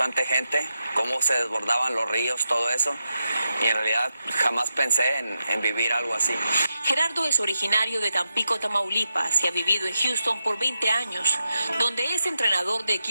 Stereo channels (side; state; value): both; inverted; correlation -0.86